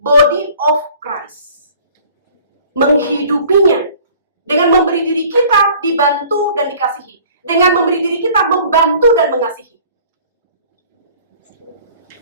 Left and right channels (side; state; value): both; inverted; correlation -0.50